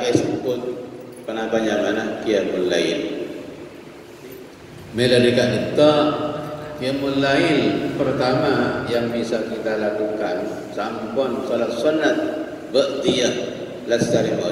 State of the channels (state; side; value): identical; both; correlation 1.00